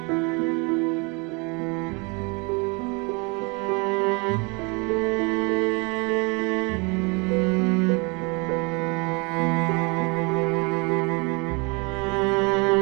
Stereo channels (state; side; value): quieter; left; 30.6 dB